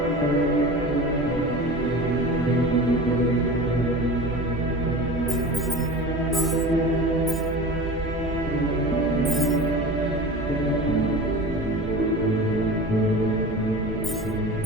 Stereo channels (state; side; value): normal; both; correlation 0.34